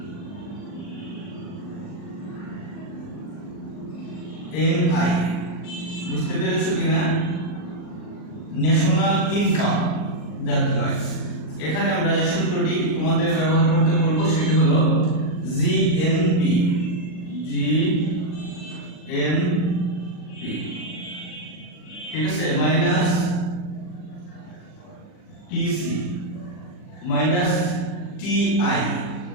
এনআই বুঝতে পেরেছো কিনা? ন্যাশনাল ইনকাম, জাতীয় আয়। এখানে আমরা যে সূত্রটি তোমাদের ব্যবহার করতে বলবো সেটি হলো জিএনপি। ঠিক আছে, minus TC minus TI.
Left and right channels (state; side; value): late; right; 39 ms